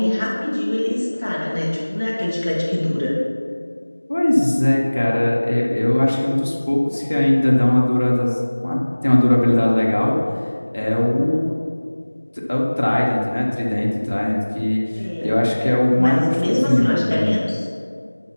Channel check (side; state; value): both; inverted; correlation -1.00